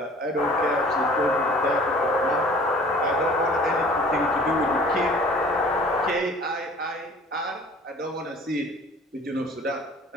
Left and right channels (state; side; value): normal; both; correlation 0.49